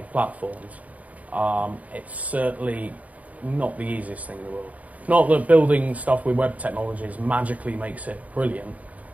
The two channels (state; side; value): late; left; 0.071 ms